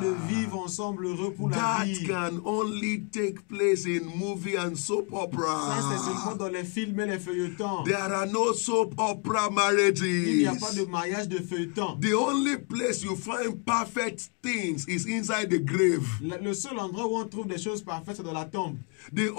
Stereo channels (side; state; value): right; quieter; 34.8 dB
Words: de vivre ensemble heureux pour la That vie. can only take place in movie and soap Ça, c'est seulement opera. dans les films et les feuilletons. There are no soap opera Il n'y a pas marriages. de mariage de feuilleton. The only place you find perfect things is inside the grave. Le seul endroit où on trouve des choses parfaites, c'est dans la tombe. The